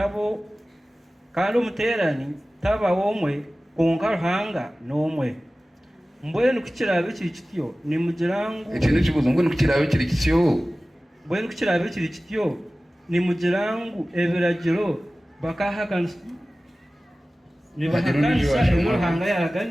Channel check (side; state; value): both; normal; correlation 0.97